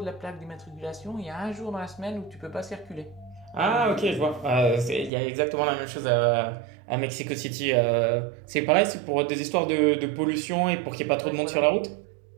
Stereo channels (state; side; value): drops out; left; at 5.1 s